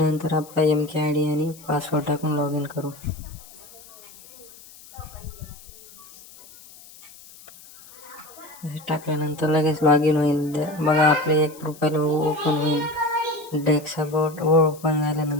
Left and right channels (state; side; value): noise; left; hiss, 21 dB below the sound